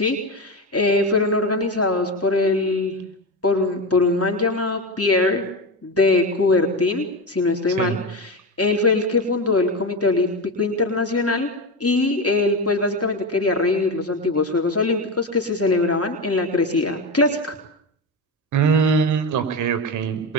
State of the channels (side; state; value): both; normal; correlation 0.18